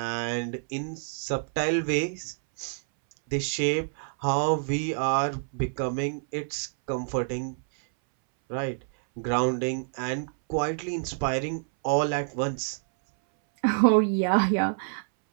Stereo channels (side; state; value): left; silent; 60 dB below the other